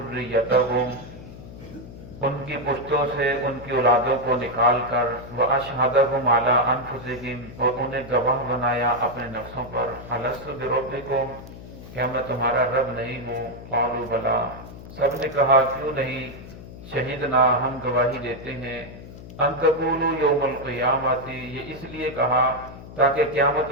ان کی پشتوں سے ان کی اولادوں کو نکال کر وَأَشْهَدَهُمْ عَلَىٰ أَنفُسِهِمْ اور انہیں گواہ بنایا اپنے نفسوں پر أَلَسْتُ بِرَبِّكُمْ کہ میں تمہارا رب نہیں ہوں قَالُوا بَلَىٰ سب نے کہا کیوں نہیں شہیدنا ہم گواہی دیتے ہیں أَن تَقُولُوا يَوْمَ الْقِيَامَةِ یہ اس لیے کہا تاکہ قیامت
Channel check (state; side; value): noise; left; hum, 15 dB below the sound